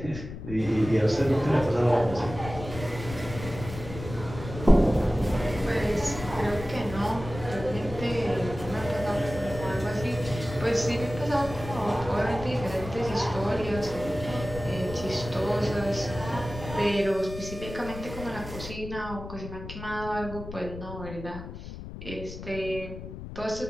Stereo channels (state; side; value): noise; left; rumble, 11 dB below the sound